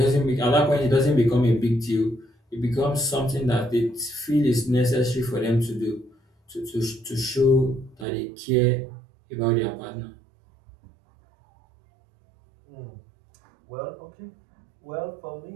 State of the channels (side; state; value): left; drops out; at 8.1 s